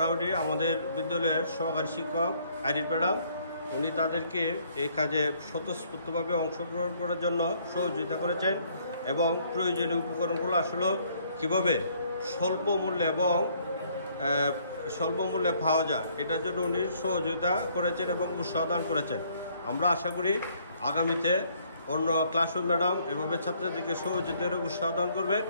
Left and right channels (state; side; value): inverted; both; correlation -0.64